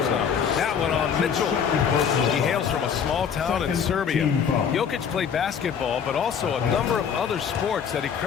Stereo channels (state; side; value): quieter; right; 7.3 dB